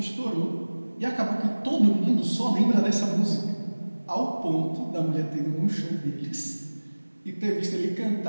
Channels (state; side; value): inverted; both; correlation -1.00